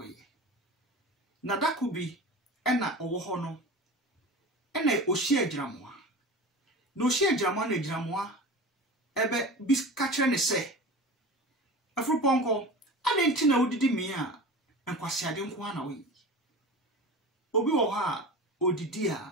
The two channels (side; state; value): both; normal; correlation 0.33